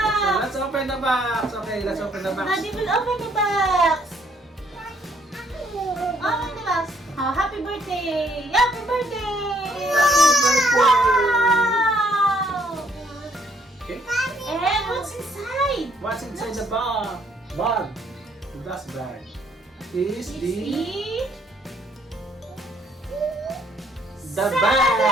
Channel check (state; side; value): normal; both; correlation 0.66